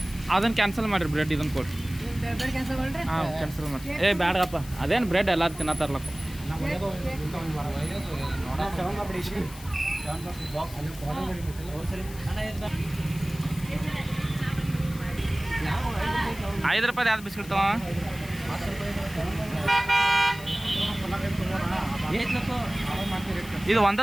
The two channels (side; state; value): left; noise; hiss, 17 dB below the sound